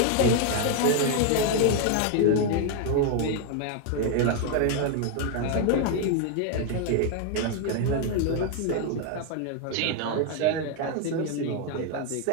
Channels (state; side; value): different; both; correlation 0.00